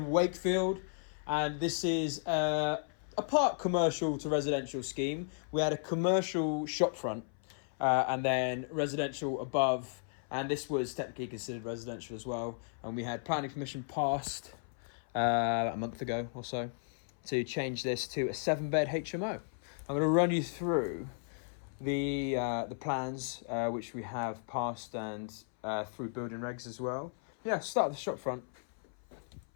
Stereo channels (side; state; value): right; silent; 55 dB below the other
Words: Wakefield, and this is a part commercial to residential scheme. We had a commercial shopfront and then residential above, and this was technically considered residential as well. And we had planning permission passed a month ago or so to change this to a 7-bed HMO. I'm going to run you through the plans which we have passed and through building regs as well. Yeah, start at the shopfront.